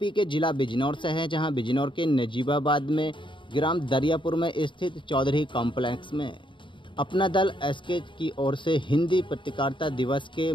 के जिला बिजनौर से है, जहां बिजनौर के नजीबाबाद में ग्राम दरियापुर में स्थित चौधरी कॉम्प्लेक्स में अपना दल एसके की ओर से हिंदी पत्रकारिता दिवस के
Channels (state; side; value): late; right; 0.24 ms